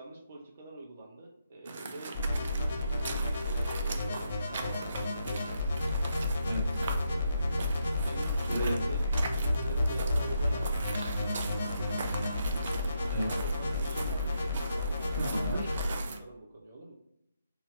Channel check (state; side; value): inverted; both; correlation -0.80